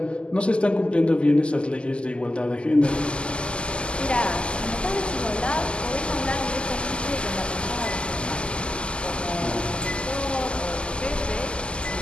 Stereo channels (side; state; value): right; late; 0.052 ms